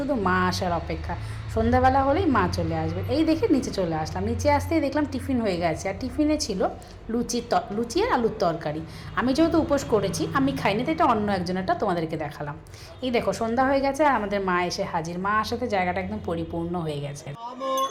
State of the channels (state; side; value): identical; both; correlation 1.00